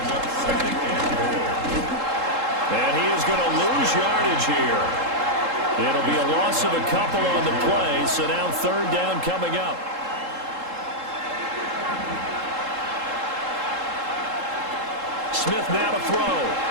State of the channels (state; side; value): late; left; 3.7 ms